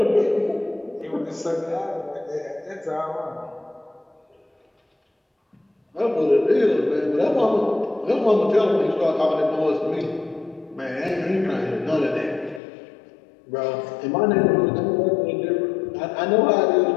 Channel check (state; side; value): drops out; right; at 12.6 s